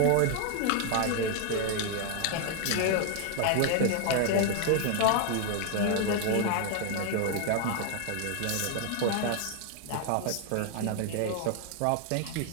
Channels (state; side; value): different; both; correlation 0.00